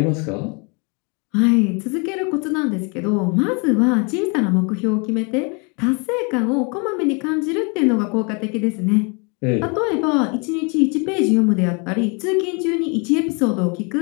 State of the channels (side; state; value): right; quieter; 33.1 dB